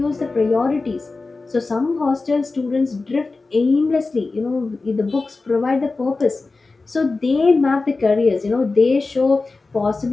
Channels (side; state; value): right; quieter; 3.7 dB